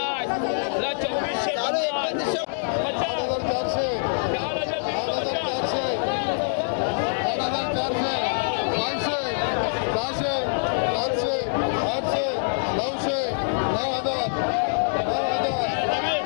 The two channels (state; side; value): silent; right; digital silence